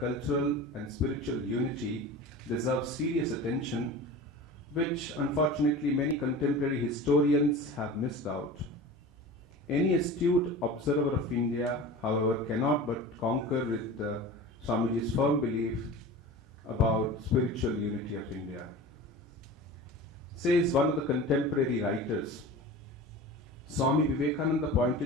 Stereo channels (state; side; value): normal; both; correlation 0.35